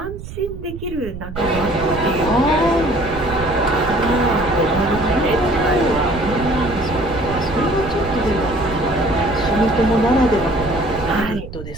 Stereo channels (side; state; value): right; noise; rumble, 11 dB below the sound